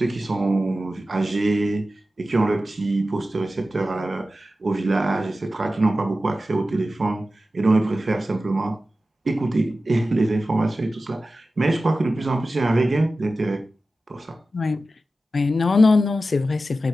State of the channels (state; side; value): normal; both; correlation 0.94